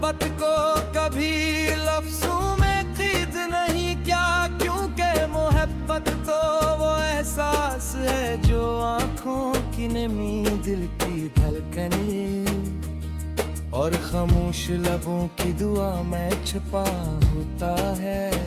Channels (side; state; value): both; identical; correlation 1.00